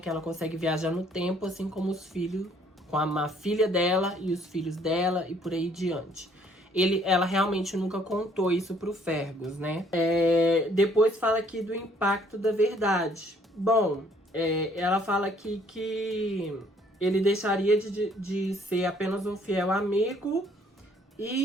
ela consegue viajar no tempo, assim como os filhos, com a filha dela e os filhos dela e por aí diante. Ela realmente nunca contou isso pro Fergus, né? Depois fala aqui do impacto da verdade. Bom, ela fala aqui que ele deixaria de ser apenas um fiel amigo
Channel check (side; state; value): both; normal; correlation 0.62